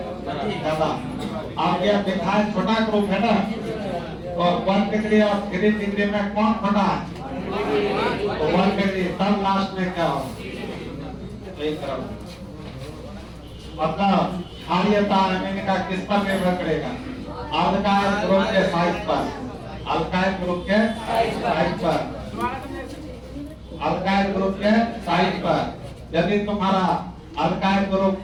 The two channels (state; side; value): identical; both; correlation 1.00